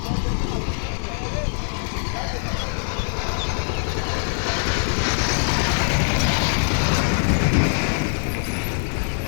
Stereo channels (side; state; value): right; silent; 64 dB below the other